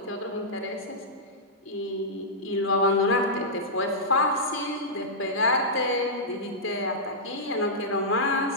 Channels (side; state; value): both; normal; correlation -0.12